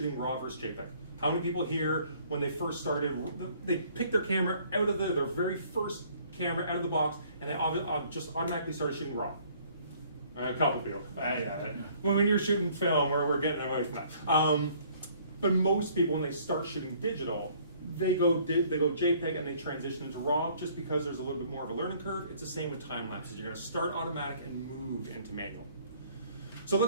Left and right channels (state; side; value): inverted; both; correlation -0.59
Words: RAW versus JPEG. How many people here, when they first started, they picked their camera out of their very first camera out of the box, and they just automatically started shooting RAW? A couple people. When you're shooting film, we're getting away from that. But most people, when they start shooting digital, they go JPEG and they transition into RAW just because there's a little bit more of a learning curve. It's the same with time lapses. You're going to start automatic and move into manual. So